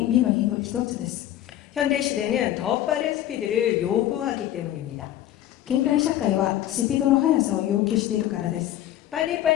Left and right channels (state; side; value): quieter; right; 12.7 dB